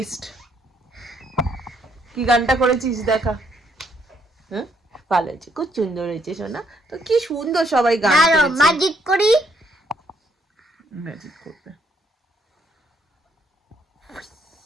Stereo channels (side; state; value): both; normal; correlation 0.70